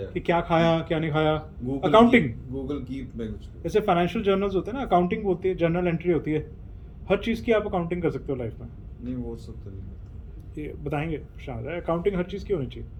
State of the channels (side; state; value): both; identical; correlation 1.00